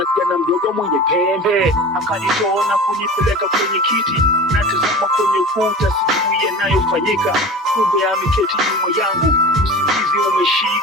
kijana mdogo mwenye pembe akanitoa na kunipeleka kwenye kiti. Natazama kwenye ukuta, sijui yanayofanyika, kumbe ameketi nyuma yangu. Usingizi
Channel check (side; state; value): both; normal; correlation 0.35